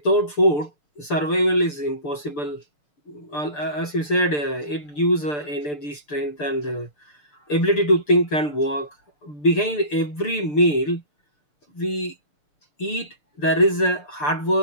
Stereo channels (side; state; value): right; late; 6.8 ms